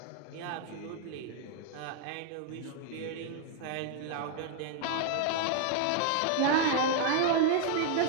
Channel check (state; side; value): different; both; correlation 0.00